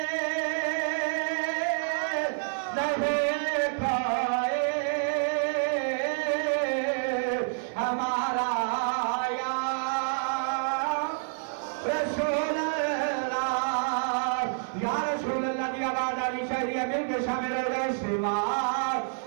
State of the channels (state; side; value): silent; left; 55 dB below the other